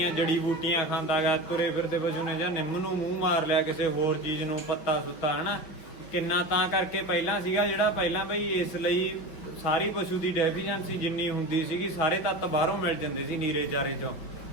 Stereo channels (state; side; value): late; right; 5.7 ms